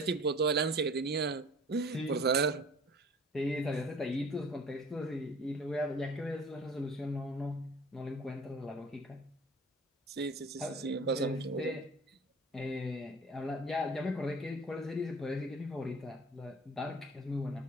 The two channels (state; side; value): normal; both; correlation 0.45